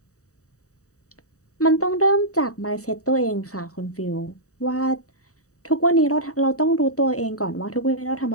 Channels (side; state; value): right; late; 0.65 ms